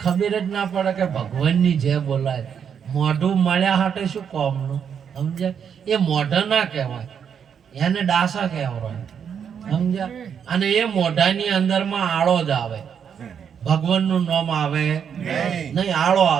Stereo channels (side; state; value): left; quieter; 7.6 dB